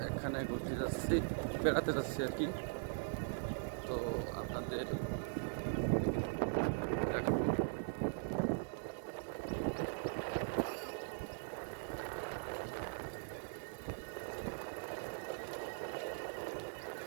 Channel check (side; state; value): left; silent; digital silence